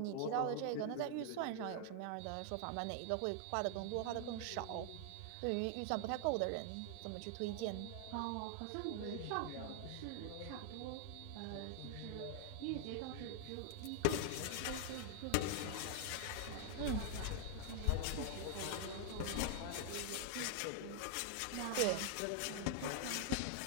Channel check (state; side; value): different; both; correlation 0.00